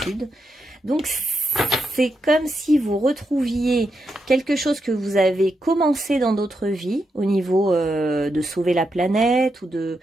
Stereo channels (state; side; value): normal; both; correlation 0.84